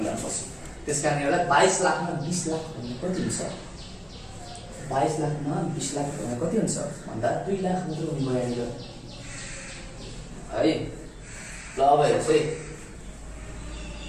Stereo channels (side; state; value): both; identical; correlation 1.00